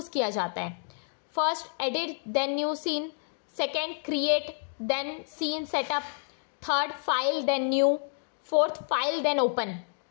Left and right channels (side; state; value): right; silent; 58 dB below the other